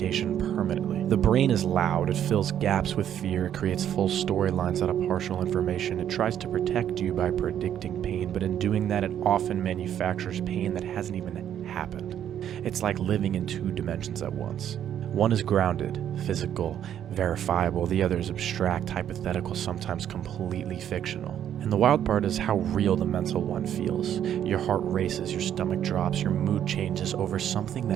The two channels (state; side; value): quieter; left; 10.1 dB